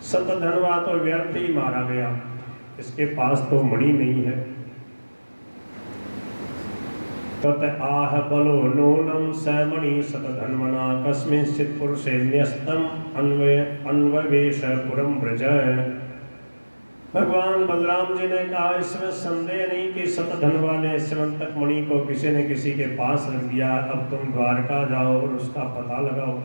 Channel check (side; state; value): both; inverted; correlation -1.00